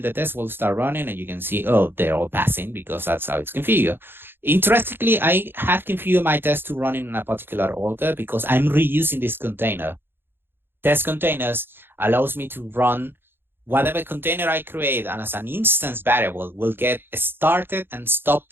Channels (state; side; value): late; left; 0.10 ms